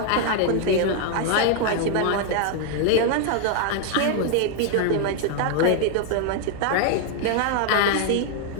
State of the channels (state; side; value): different; both; correlation 0.00